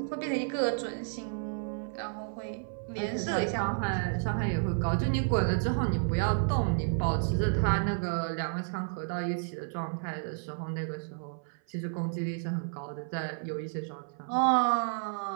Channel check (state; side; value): silent; left; 57 dB below the other